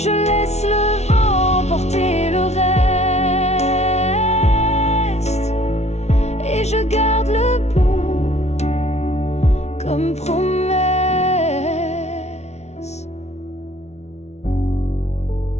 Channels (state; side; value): late; right; 0.32 ms